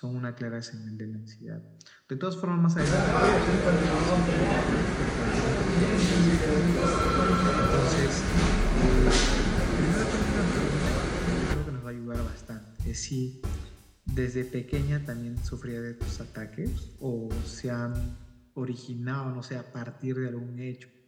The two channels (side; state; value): both; identical; correlation 1.00